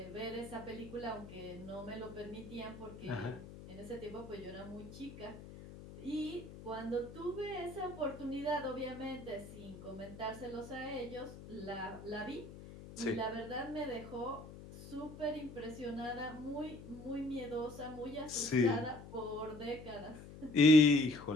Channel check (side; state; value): left; noise; hum, 14 dB below the sound